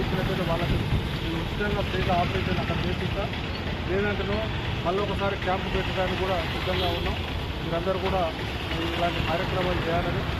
వాళ్ళకి నేను ఉచితంగా ఫ్రీగా ఆపరేషన్ అక్కడ చేపిస్తా. లేదంటే మళ్ళీ ఒకసారి క్యాంపు పెట్టడానికి కూడా సిద్ధంగా ఉన్నాం. మీరందరూ కూడా ఇలాంటి కార్యక్రమాలు చేయాలని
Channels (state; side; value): identical; both; correlation 1.00